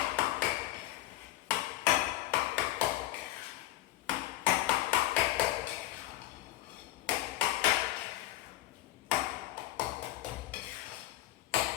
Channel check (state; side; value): quieter; right; 15.7 dB